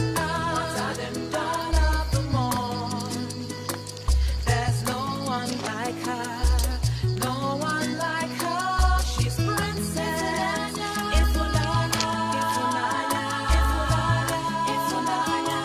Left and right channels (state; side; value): identical; both; correlation 1.00